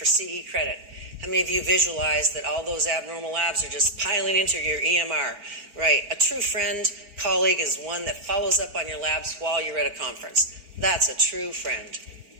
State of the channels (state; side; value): late; left; 4.5 ms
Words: CE credit. How many of you visualize that all those abnormal labs are just piling into your EMR? Right. A true friend, colleague is one that follows up on your labs while you're at a conference. That's a true friend.